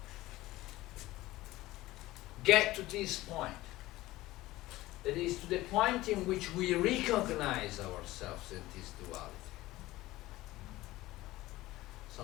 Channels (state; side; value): quieter; right; 17.6 dB